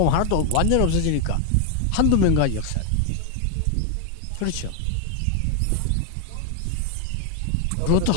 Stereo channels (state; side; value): different; both; correlation 0.01